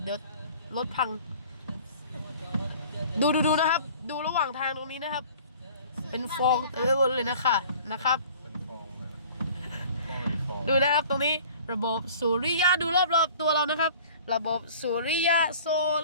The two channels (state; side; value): inverted; both; correlation -0.47